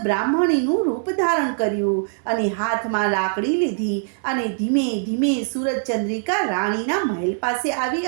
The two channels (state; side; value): silent; left; digital silence